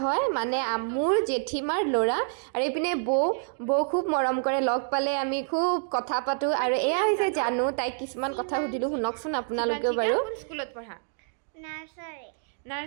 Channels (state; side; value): silent; left; digital silence